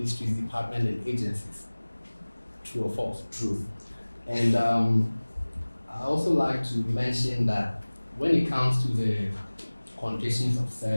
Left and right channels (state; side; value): inverted; both; correlation -1.00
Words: departments, and agencies. True or false? True. And I also like to mention that when it comes to the conditions of